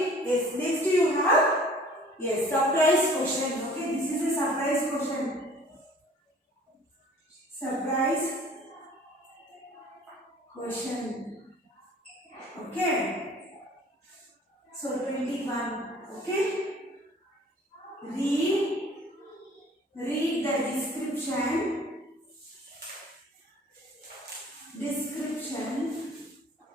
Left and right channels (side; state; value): both; normal; correlation 0.51